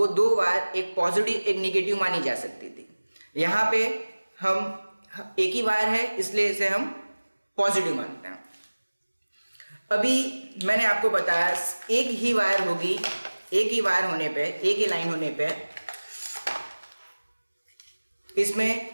दो वायर एक पॉजिटिव एक निगेटिव मानी जा सकती थी। यहाँ पे हम एक ही वायर है इसलिए इसे हम पॉजिटिव मानते हैं। अभी मैंने आपको बताया एक ही वायर होगी, एक ही वायर होने पे, एक ही लाइन होने पे इसमें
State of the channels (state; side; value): inverted; both; correlation -1.00